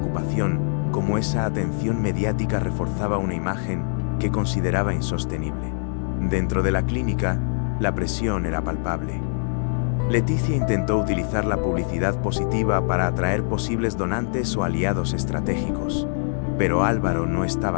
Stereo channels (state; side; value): silent; right; digital silence